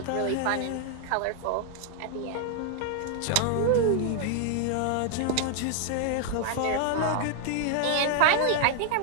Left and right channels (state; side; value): different; both; correlation 0.00